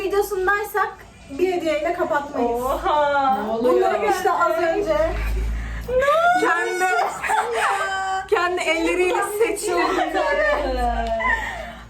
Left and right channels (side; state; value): both; identical; correlation 1.00